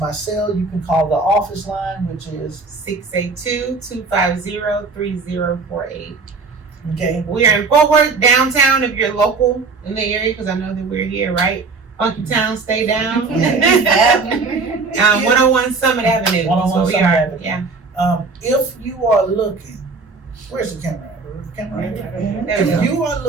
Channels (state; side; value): quieter; left; 4.2 dB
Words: cell. You can call the office line, which is 682-250-3048. okay. We are in Fort Worth downtown. If you're local in the area, because I know that we're here, right? Funky Town, stay down. 101 Summit Avenue. That's 101 where we Summit are. Avenue. Yeah. If you are looking, where's the camera? The camera right there. There we go. If you are